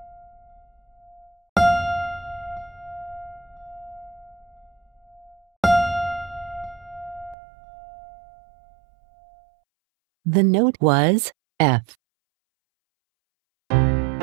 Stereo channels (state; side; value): drops out; left; at 7.4 s